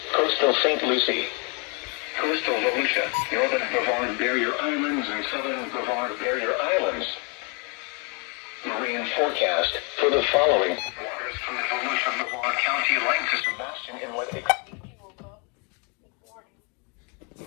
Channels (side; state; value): right; quieter; 34.3 dB